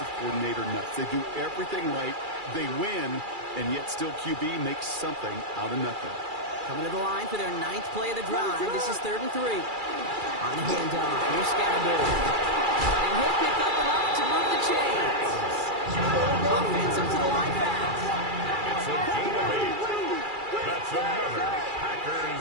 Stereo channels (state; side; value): late; left; 2.3 ms